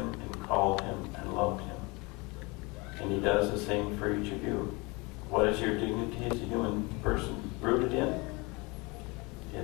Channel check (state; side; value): quieter; right; 26.5 dB